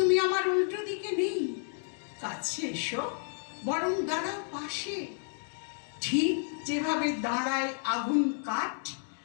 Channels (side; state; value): right; silent; 57 dB below the other